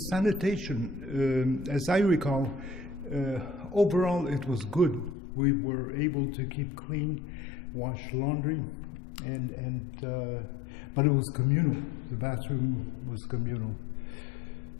sanitation, as I recall, overall it was good. We were able to keep clean, wash laundry, but it was communal. The bathroom was communal.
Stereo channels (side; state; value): right; drops out; at 5.2 s